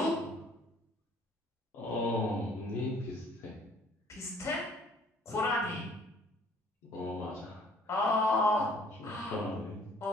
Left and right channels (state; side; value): normal; both; correlation 0.57